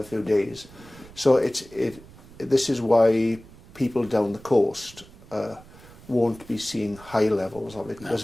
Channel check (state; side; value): noise; right; rumble, 21 dB below the sound